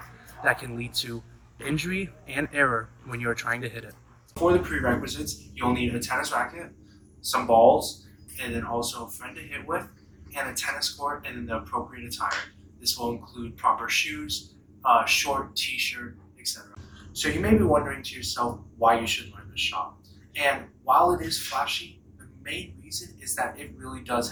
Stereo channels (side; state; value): both; identical; correlation 1.00